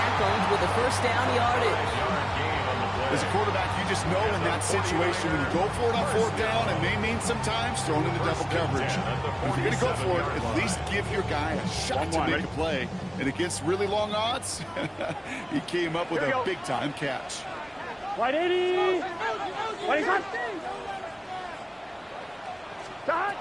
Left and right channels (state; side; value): identical; both; correlation 1.00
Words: with the 1st down yardage. As a quarterback, you just know in that situation when you go for it on 4th down, it may mean sometimes thrown into double coverage. But if you're going to go for it, at least give your guy a shot to make a play. And against really long odds, he came up with a big-time catch. 180. 25. Stop.